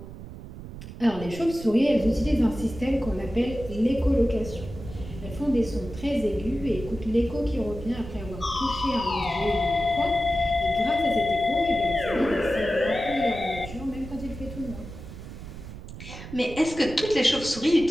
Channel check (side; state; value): right; noise; rumble, 12 dB below the sound